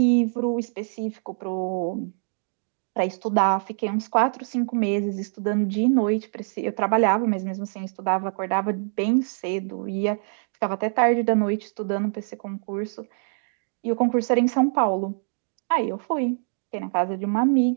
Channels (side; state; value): left; silent; digital silence